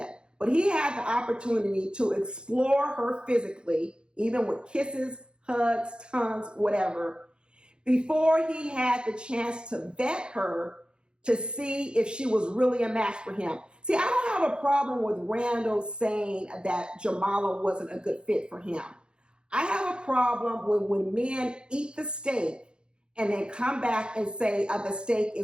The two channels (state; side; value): late; left; 0.051 ms